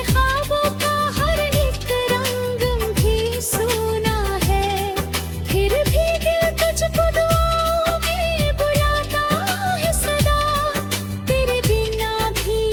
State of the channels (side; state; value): both; identical; correlation 1.00